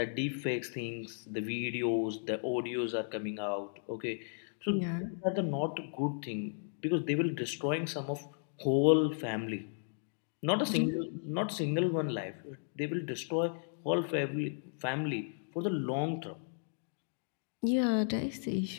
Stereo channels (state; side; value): silent; right; digital silence